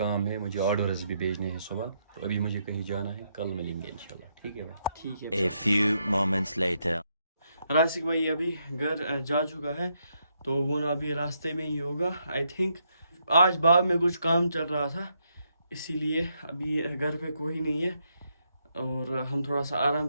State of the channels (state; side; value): inverted; both; correlation -0.78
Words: ہے, مجھے آرڈرز بھی بھیجنے ہیں صبح, تو ابھی مجھے کہیں جانا ہے. کل ملیں گے انشاءاللہ. ٹھیک ہے بھائی. ٹھیک ہے. A few moments later. راسک بھائی ابھی گھر جا چکا ہے, تو وہ نا ابھی راستے میں ہی ہوگا آئی تھنک. آج باغ میں کچھ کام چل رہا تھا, اسی لیے ابھی گھر پہ کوئی نہیں ہے, اور ہم تھوڑا سا آرام